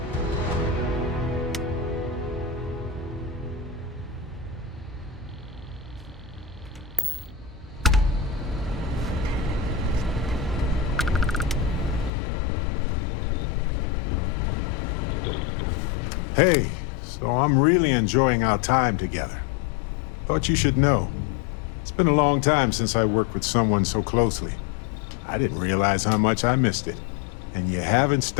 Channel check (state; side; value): drops out; right; at 12.1 s